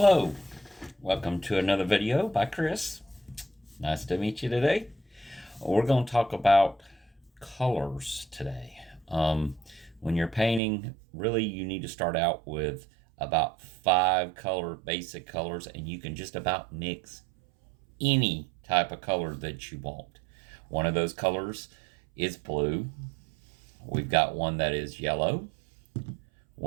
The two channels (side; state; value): left; drops out; at 10.6 s